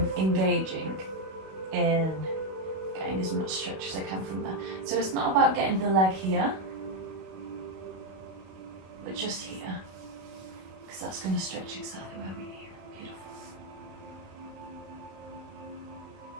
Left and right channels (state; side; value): late; left; 32 ms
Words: engaging in getting as much stretch as I can from there. So it's not about getting the leg here, but just here. Because because that's going to stretch exactly where we need. Beautiful.